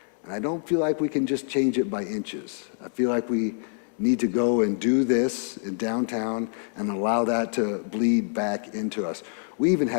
And I don't feel like we can just change it by inches. I feel like we need to go and do this in downtown and allow that to bleed back into us. We even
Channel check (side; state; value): right; silent; digital silence